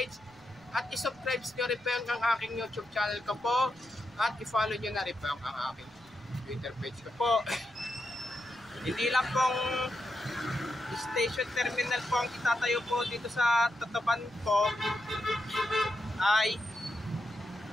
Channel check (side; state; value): right; noise; rumble, 29 dB below the sound